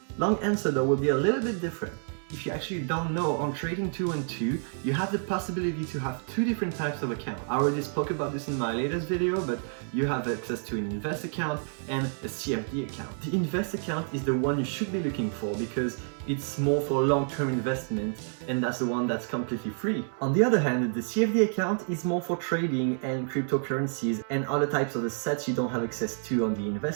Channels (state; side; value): silent; left; 59 dB below the other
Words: Long answer though will be a little bit different. If you actually don't know, on Trading 212, you have the possibility to have 2 different types of accounts. I already spoke about this in my latest video, but you have access to an invest account and a CFD account. The invest account is the one you should be looking for because it's more for long-term investment, and that's the one that's completely free. On the other hand, the CFD account is more for trading and cryptocurrencies and other types of assets you don't have access to on the